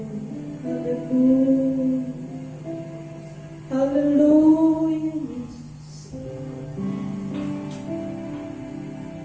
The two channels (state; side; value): identical; both; correlation 1.00